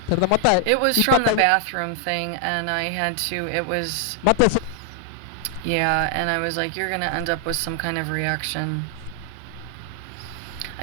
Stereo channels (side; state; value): both; different; correlation 0.00